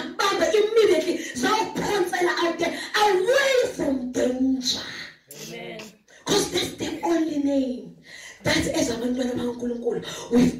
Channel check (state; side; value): identical; both; correlation 1.00